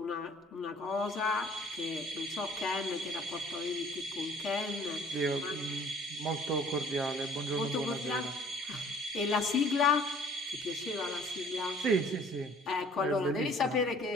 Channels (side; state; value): both; normal; correlation 0.54